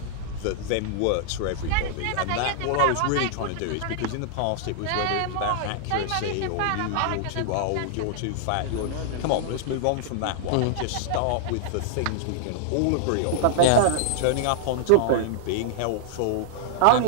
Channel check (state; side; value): different; both; correlation -0.01